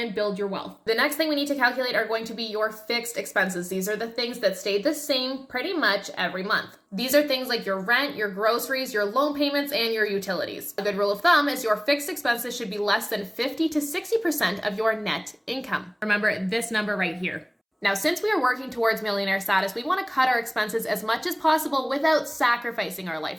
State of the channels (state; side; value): identical; both; correlation 1.00